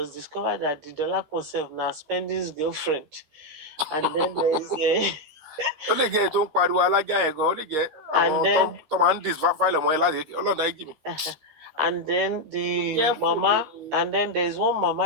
discovered that the dollar self now spending his girlfriend. And then there's a ó lè jẹ́ ètò ń pariwo alájà yẹn gan ó lè jẹ́ And àwọn then- tó máa ń dis file ọmọ yẹn láti ọlọ́dà ẹ̀jì mi. and then the Careful, mama, oh. and then there's one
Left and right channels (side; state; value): left; late; 13 ms